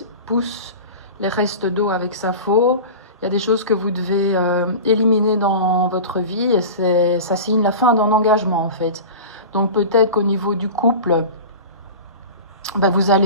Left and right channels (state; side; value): inverted; both; correlation -0.32